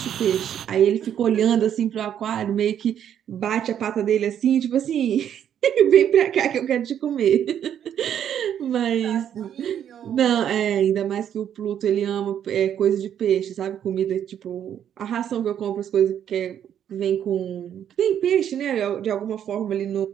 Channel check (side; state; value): left; quieter; 9.6 dB